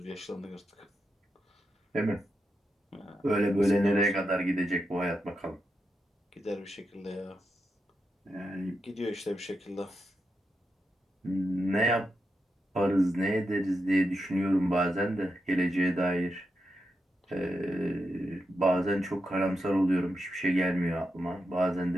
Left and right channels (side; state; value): both; normal; correlation 0.86